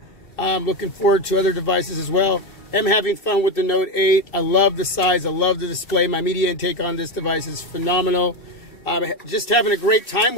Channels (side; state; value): right; late; 2.6 ms